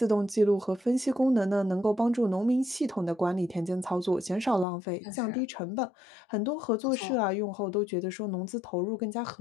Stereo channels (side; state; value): right; drops out; at 4.7 s